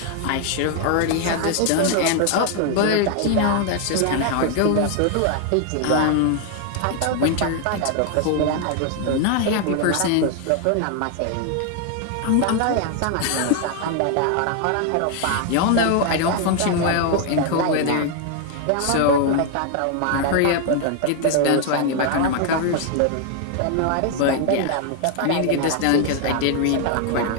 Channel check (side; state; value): both; different; correlation 0.00